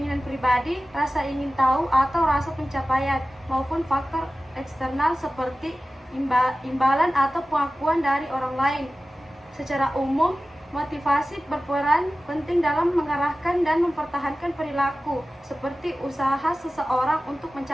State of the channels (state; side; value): normal; both; correlation 0.95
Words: pribadi, rasa ingin tahu, atau rasa pencapaian, maupun faktor eksternal seperti imbalan atau pengakuan dari orang lain. Secara umum, motivasi berperan penting dalam mengarahkan dan mempertahankan perilaku, seperti usaha seseorang untuk